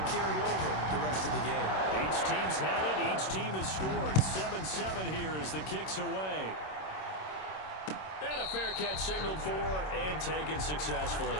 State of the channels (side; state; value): right; late; 26 ms